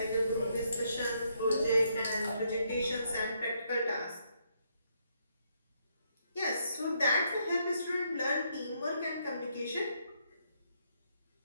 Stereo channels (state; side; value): inverted; both; correlation -0.75